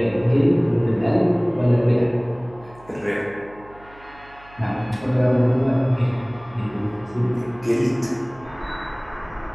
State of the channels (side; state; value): right; noise; hum, 24 dB below the sound